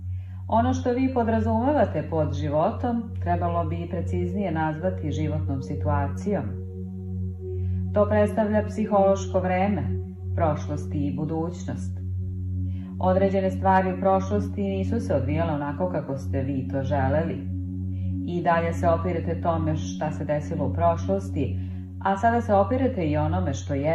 Ono što vi podrazumevate pod životom trebalo bi preciznije nazvati životnom situacijom. To predstavlja psihološko vreme, prošlost i budućnost. Određene stvari u prošlosti nisu se odvijale onako kako ste vi to želeli. I dalje se opirete tome šta se desilo u prošlosti, a sada se opirete i onome što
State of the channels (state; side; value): identical; both; correlation 1.00